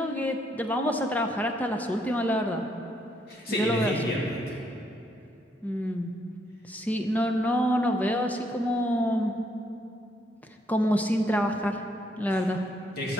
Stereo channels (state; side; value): normal; both; correlation 0.73